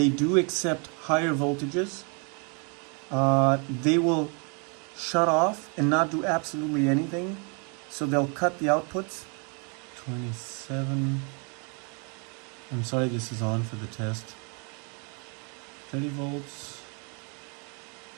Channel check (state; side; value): quieter; left; 35.6 dB